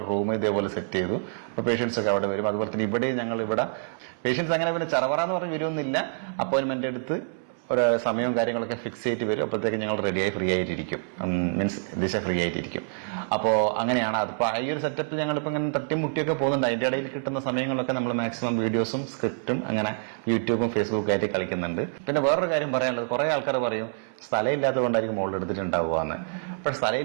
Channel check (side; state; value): left; silent; 60 dB below the other